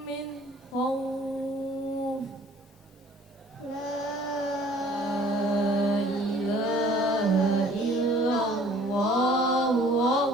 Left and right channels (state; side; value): normal; both; correlation 0.54